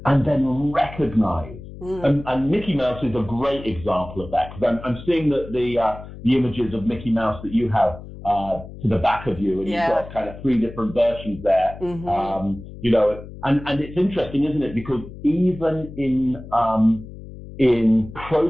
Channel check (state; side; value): noise; left; hum, 14 dB below the sound